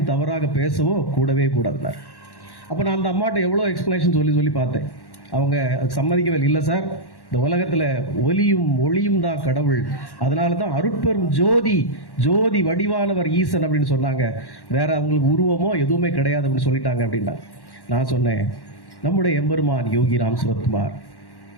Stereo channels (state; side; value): late; right; 1.1 ms